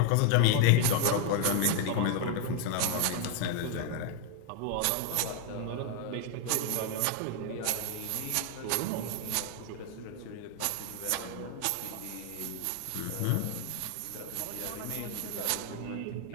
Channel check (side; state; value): both; different; correlation 0.01